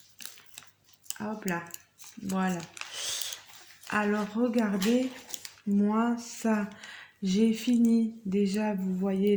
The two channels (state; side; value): identical; both; correlation 1.00